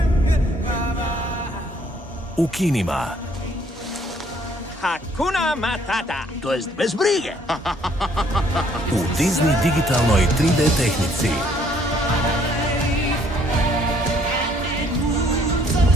U kinima. Hakuna Matata, to jest bez brige. U Disney digitalnoj 3D tehnici.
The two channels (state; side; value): normal; both; correlation 0.64